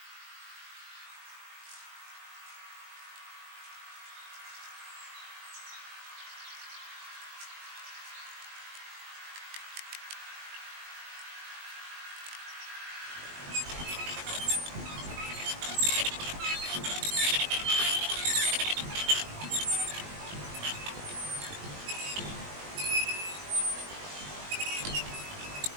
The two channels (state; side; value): late; left; 20 ms